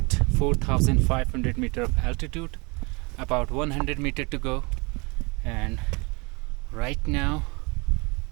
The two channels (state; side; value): quieter; left; 28.2 dB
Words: 4,500 meter of altitude, about 100 meter to go, and right now